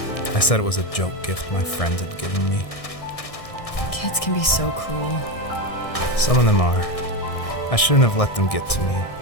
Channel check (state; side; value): late; right; 1.6 ms